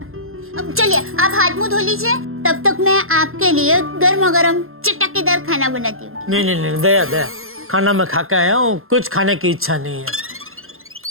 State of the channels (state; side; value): late; left; 0.61 ms